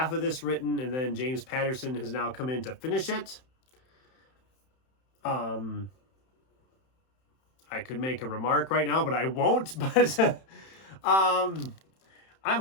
of this written, and then James Patterson has now come in to finish it. I could make a remark right now, but I won't. But I'm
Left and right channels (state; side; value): late; right; 31 ms